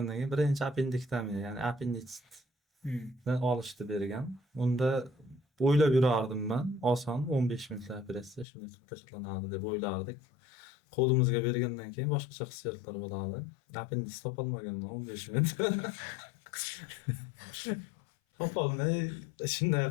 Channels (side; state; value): right; drops out; at 8.5 s